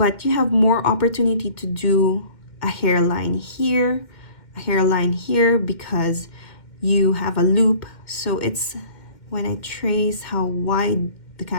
you have more opportunity to do a hairline here, because you have a loop. So it's, when I trace how wide the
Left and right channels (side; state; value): right; late; 2.1 ms